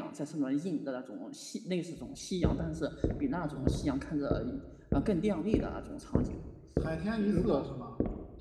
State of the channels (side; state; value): both; identical; correlation 1.00